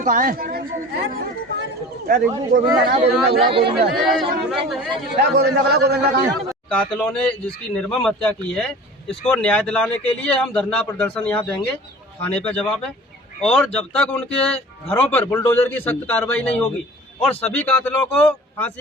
कहाँ है? रिंकू गोविंदा ना, गोविंदा बुला, गोविंदा बुला, गोविंदा कहाँ है? कातिलों ने जिसकी निर्मम हत्या की है, इसको न्याय दिलाने के लिए हम धरना प्रदर्शन यहाँ देंगे, थाने पे जवाब है। और जब तक उनके घरों पर बुलडोजर की सख्त कार्रवाई नहीं होगी और सभी कातिलों को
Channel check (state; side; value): normal; both; correlation 0.41